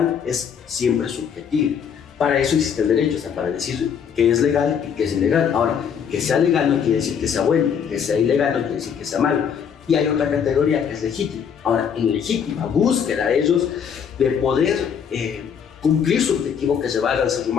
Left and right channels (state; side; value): quieter; right; 7.5 dB